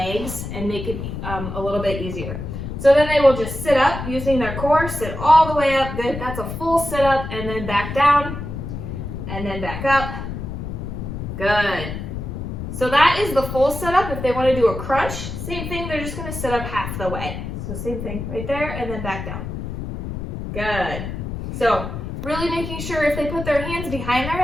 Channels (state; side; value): noise; left; rumble, 6 dB below the sound